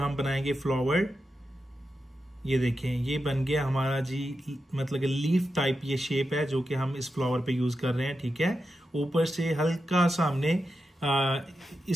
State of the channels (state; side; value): normal; both; correlation 0.89